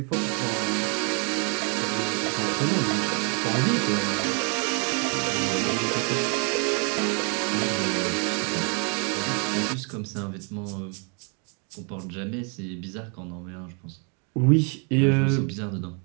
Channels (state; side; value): quieter; left; 36.8 dB